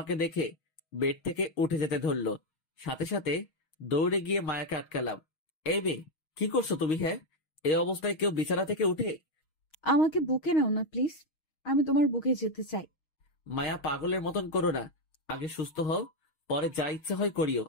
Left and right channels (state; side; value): late; right; 6.4 ms